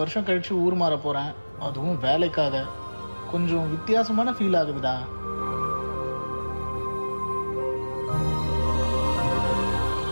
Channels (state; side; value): inverted; both; correlation -1.00